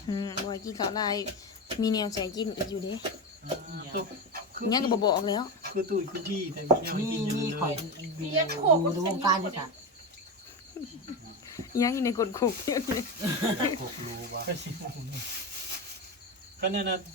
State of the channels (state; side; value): normal; both; correlation 0.18